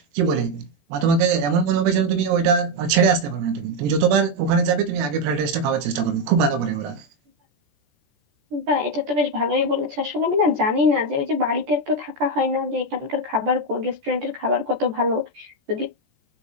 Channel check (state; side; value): late; left; 14 ms